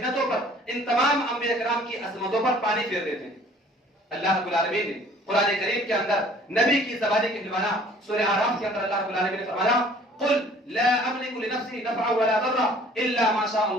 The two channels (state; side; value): normal; both; correlation 0.53